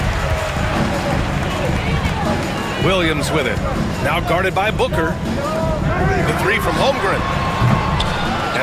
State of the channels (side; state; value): both; identical; correlation 1.00